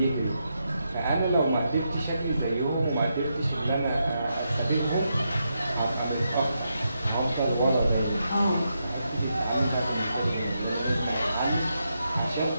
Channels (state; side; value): inverted; both; correlation -0.83